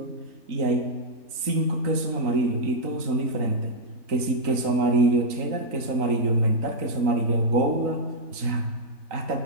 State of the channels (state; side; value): late; left; 3.8 ms